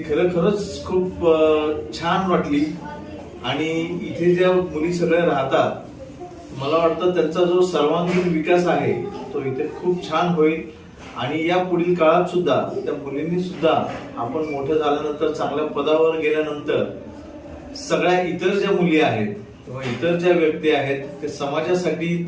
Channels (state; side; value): identical; both; correlation 1.00